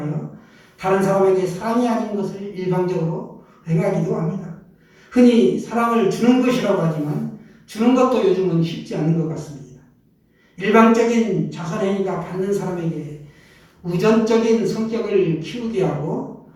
다른 사람에게 사랑이 아닌 것을 일방적으로 행하기도 합니다. 흔히 사랑을 주는 것이라고 하지만 주는 것도 요즘은 쉽지 않은 것 같습니다. 일방적인 자선행위가 받는 사람에게 우전적인 성격을 키우게 하고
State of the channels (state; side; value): identical; both; correlation 1.00